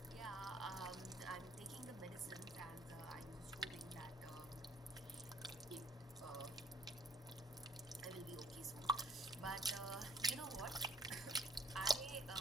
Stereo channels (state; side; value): normal; both; correlation 0.60